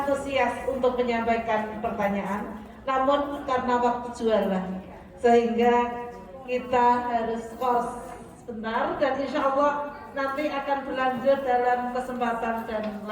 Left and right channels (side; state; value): both; identical; correlation 1.00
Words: untuk menyampaikan pertanyaan, namun karena waktu jualan sehingga kita harus pause sebentar dan insya Allah nanti akan berlanjut dalam kesempatan dan